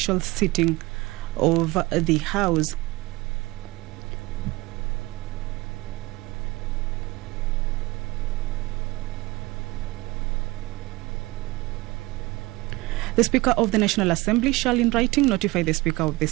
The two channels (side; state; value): left; quieter; 21.4 dB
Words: sitting of the House. The Speaker of the National Assembly shall in writing notify the Speaker of the